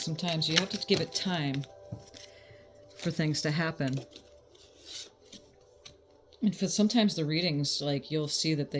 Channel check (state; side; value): identical; both; correlation 1.00